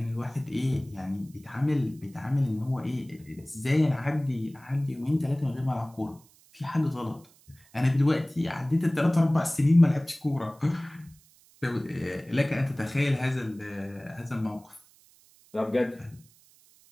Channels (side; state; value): right; noise; hiss, 28 dB below the sound